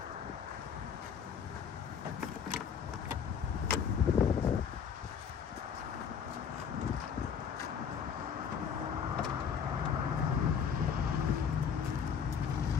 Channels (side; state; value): right; quieter; 7.2 dB